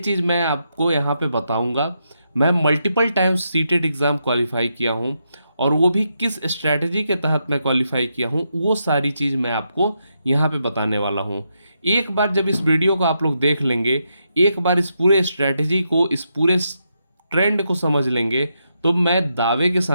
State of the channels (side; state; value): both; inverted; correlation -0.82